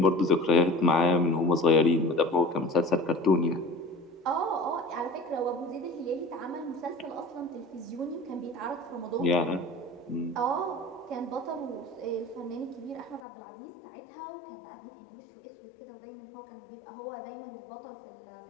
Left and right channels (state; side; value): drops out; right; at 13.2 s